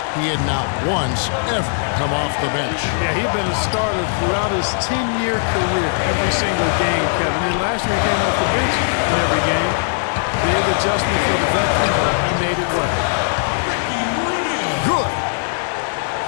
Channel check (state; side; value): silent; right; 66 dB below the other